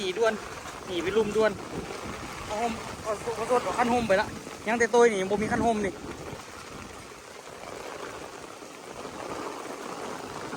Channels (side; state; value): both; identical; correlation 1.00